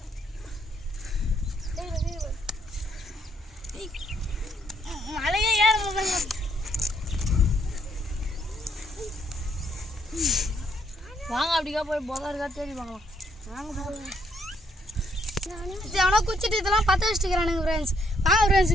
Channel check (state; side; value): normal; both; correlation 0.71